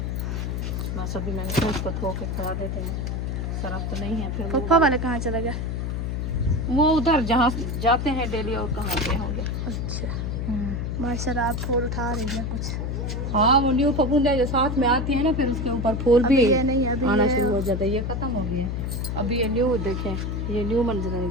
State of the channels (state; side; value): noise; left; hum, 2 dB below the sound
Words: बस अभी मैंने फिर उसको धो के खड़ा देते हैं, सरफ तो नहीं है। फिर पप्पा वाले कहाँ चले गए? वो उधर जहाँ जाते हैं डेली, और कहाँ गए होंगे। अच्छा, माशाल्लाह आप फूल उठा रही हैं कुछ। हाँ, वो न्यू फफूंदे जो साथ में आती है ना, फिर उसके ऊपर फूल भी ये नहीं, अभी आना ये शुरू हो जाता है। ये खत्म हो गया, अभी ये न्यू देखें, ये न्यू मंजर